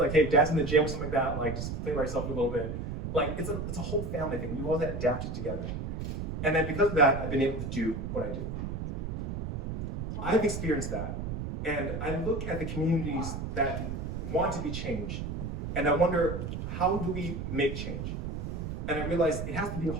hey, dad's in the gym or something like that, like just play by yourself a little bit. Like it's a whole family thing. We all have to adapt it together. And then because of that, I've been able to do what I do. I've experienced that. And I look at the communities that want to be changed, and I wonder, how do we make change? And I realize it has to be a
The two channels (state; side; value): noise; right; rumble, 4 dB below the sound